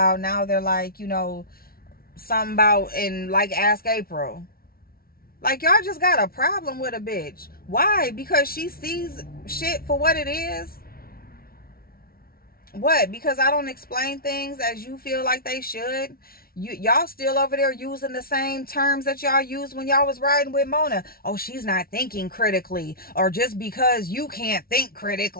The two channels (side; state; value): right; late; 0.44 ms